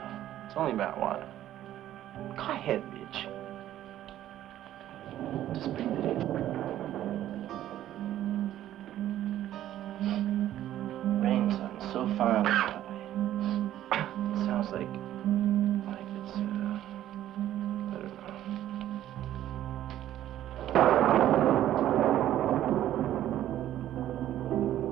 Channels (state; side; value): quieter; left; 12.6 dB